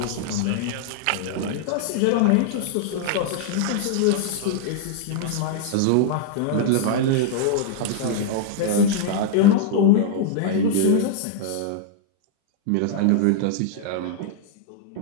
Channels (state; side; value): different; both; correlation -0.01